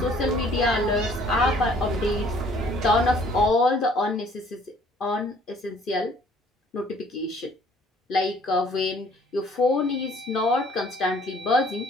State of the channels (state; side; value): normal; both; correlation 0.57